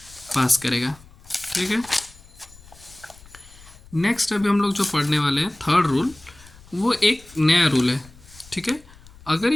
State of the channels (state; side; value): noise; left; rumble, 23 dB below the sound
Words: पास करेगा, ठीक है। नेक्स्ट अभी हम लोग जो पढ़ने वाले हैं थर्ड रूल, वो एक नया रूल है, ठीक है। अगर